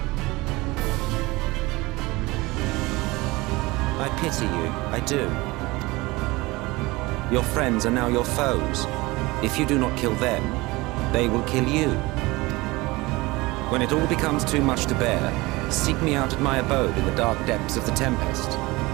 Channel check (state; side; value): quieter; left; 22.0 dB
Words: I pity you, I do. Your friends are now your foes. If you do not kill them, they will kill you. When it all becomes too much to bear, seek me out at my abode in the dark depths of the Tempest.